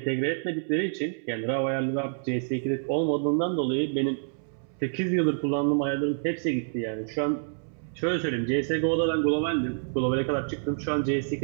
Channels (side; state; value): left; silent; 60 dB below the other